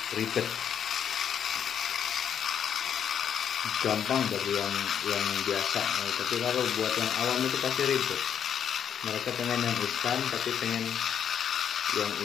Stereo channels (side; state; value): right; quieter; 8.5 dB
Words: ribet. Gampang bagi yang biasa, tapi kalau buat yang awam itu pasti ribet. Mereka pengen yang instan, tapi pengen yang